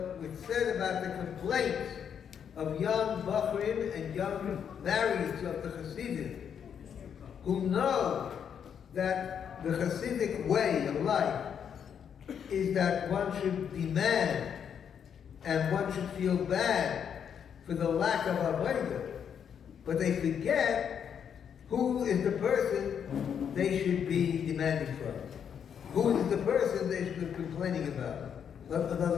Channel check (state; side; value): quieter; right; 8.0 dB